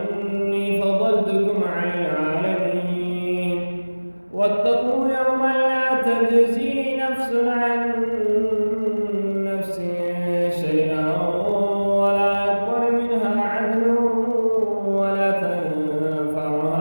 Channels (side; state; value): both; inverted; correlation -1.00